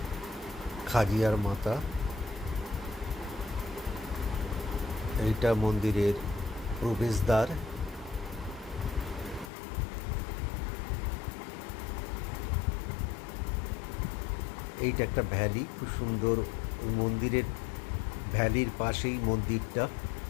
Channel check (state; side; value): drops out; right; at 9.5 s